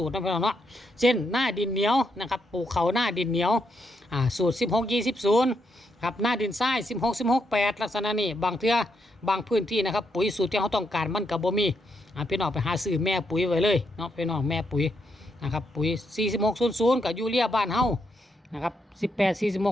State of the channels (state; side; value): normal; both; correlation 0.79